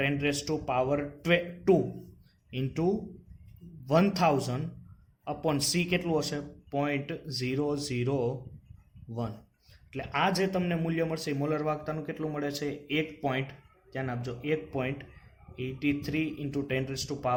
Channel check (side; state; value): both; identical; correlation 1.00